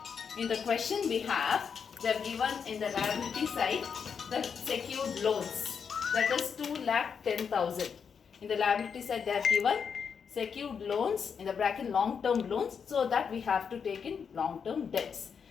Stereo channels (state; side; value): quieter; right; 6.5 dB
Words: In the question we have, they have given in the liability side the secured loans, that is 2,10,000. In the liability side they have given secured loans in the bracket long term loans, so that we have to take in long term debts.